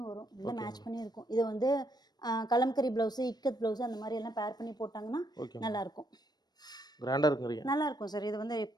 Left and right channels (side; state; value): right; late; 0.19 ms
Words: வரும். எல்லாம் மேட்ச் பண்ணி இருக்கும். இது வந்து கலம்கரி ப்ளவுஸு, இக்கத் ப்ளவுஸு அந்த மாதிரி எல்லாம் பேர் பண்ணி போட்டாங்கன்னா நல்லாயிருக்கும். கிராண்டா இருக்குறீங்க. நல்லா இருக்கும் சார். இது வந்து